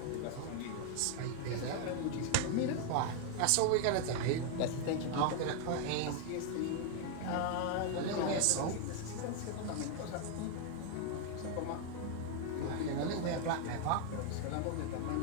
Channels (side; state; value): both; different; correlation 0.00